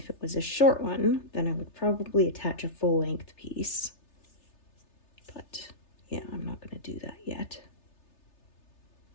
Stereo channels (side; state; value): right; late; 3.3 ms